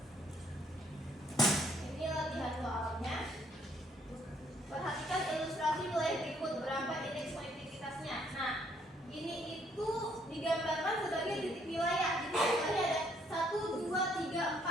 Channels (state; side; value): normal; both; correlation 0.67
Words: Ini latihan soalnya. Perhatikan ilustrasi wilayah berikut, berapa indeks konektivitasnya. Nah, ini itu digambarkan sebagai titik wilayah. Jadi wilayahnya ada 1, 2, 3,